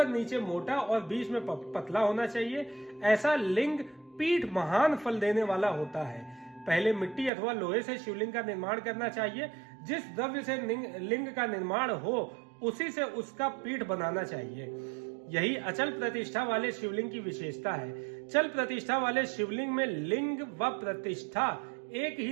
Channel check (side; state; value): left; drops out; at 7.3 s